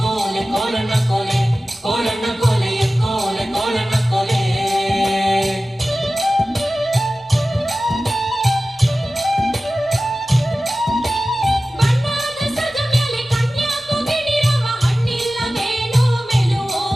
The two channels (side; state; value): both; normal; correlation 0.96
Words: ಕೋಲಣ್ಣ ಕೋಲೆ ಕೋಲಣ್ಣ ಕೋಲೆ ಎಕ್ಕೋಲೆ ಕೋಲಣ್ಣ ಕೋಲೆ ಬಣ್ಣದ ಸದ ಮೇಲೆ ಕನ್ಯಾಕು ಗಿಣಿರವ ಹಣ್ಣಿಲ್ಲ ಮೇನೋ